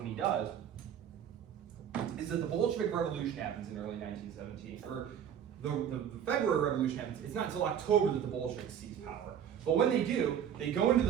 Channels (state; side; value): quieter; left; 9.0 dB